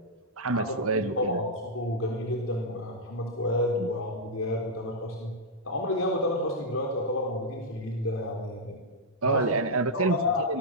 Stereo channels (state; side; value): normal; both; correlation -0.05